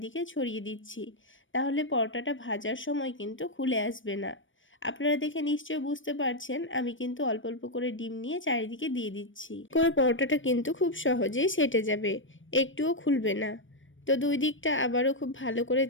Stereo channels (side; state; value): right; late; 0.56 ms